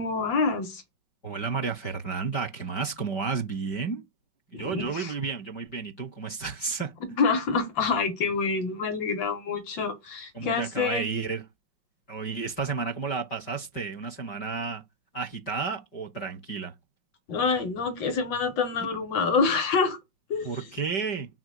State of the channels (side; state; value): right; late; 5.1 ms